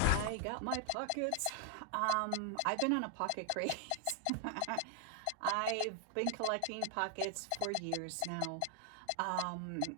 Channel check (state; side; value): different; both; correlation 0.00